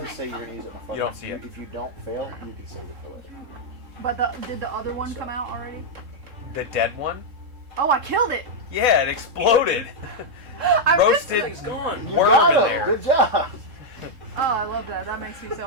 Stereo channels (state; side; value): late; left; 3.7 ms